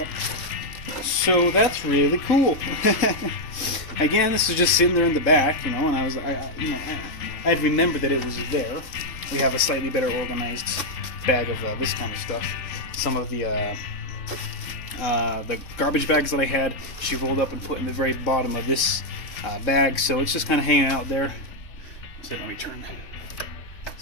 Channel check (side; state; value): right; late; 3.8 ms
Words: So that's really cool. Again, this is just sitting there in the back, and I'd remembered that it was there. We have a slightly better organized bag of this kind of stuff. Some of the garbage bags that I had, she rolled up and put in the very bottom of this bag, so it's just kind of hanging out there. So let me turn